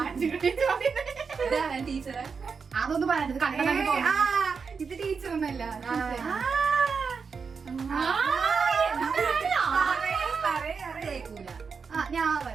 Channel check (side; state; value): left; quieter; 5.5 dB